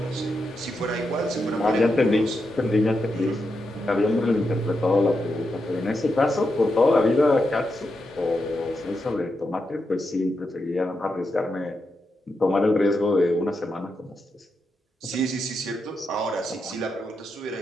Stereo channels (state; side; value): normal; both; correlation 0.85